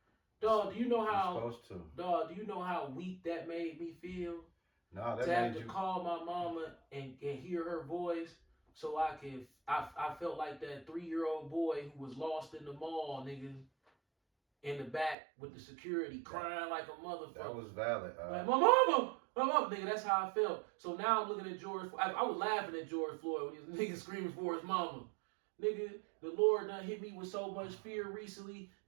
Dog, do you know how? You're supposed to. Dog, do you know how weak that made me feel? No, that to have made to you call my mama and hear her voice, so I felt like that 3-year-old boy who was lost in the mall, nigga, in the back with the security crying like a motherfucker. That was valid. Like, my mama, nigga. That's how I felt. So now I'm looking at George. I was laughing at George Floyd when he was nigga screaming for his mama. Nigga, the Lord done hit me with so much fear recently.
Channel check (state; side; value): drops out; left; at 15.2 s